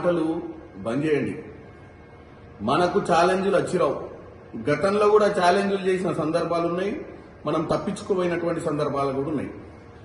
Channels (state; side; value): identical; both; correlation 1.00